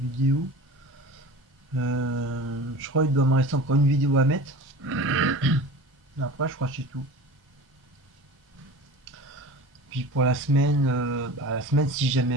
Je crois qu'il doit me rester encore une vidéo à mettre. Après, je crois que c'est tout. Puis pour la semaine, si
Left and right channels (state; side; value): normal; both; correlation 0.36